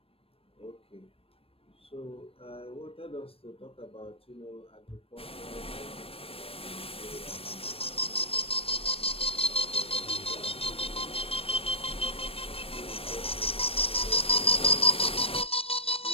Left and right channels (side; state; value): right; late; 0.28 ms